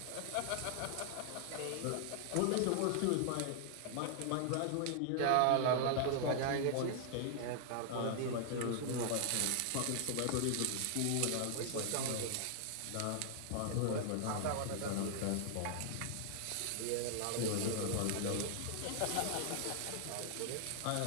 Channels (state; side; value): different; both; correlation 0.00